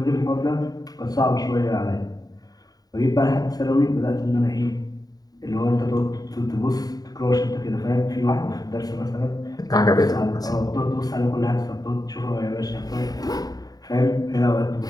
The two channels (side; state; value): right; late; 0.18 ms